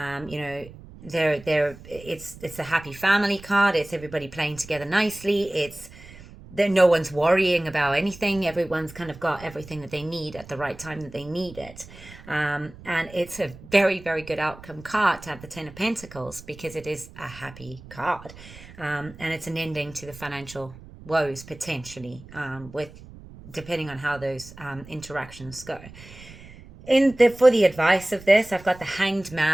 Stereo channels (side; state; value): right; noise; rumble, 18 dB below the sound